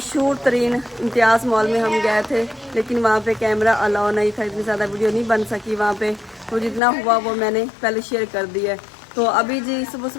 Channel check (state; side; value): drops out; right; at 6.8 s